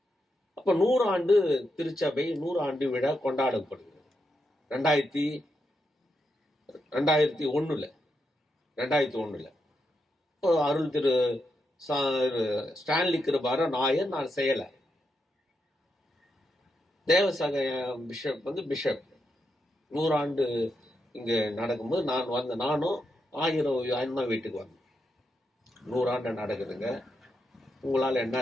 அப்ப 100 ஆண்டு திருச்சபை 100 ஆண்டு விழா கொண்டாடப்படுகிறது. 2001 இப்போ அருள் திரு ஸ்டான்லி கிருபார நாயர் நான் செய்யலை. தேவசக பிஷப் வந்து பிஷப் 100 ஆண்டு இங்கே நடக்கும்போது நானும் 1000 அண்ணா வீட்டுக்கு வந்தேன். 100 ஆண்டு நடக்குதுங்க, உங்களால்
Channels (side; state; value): both; normal; correlation 0.84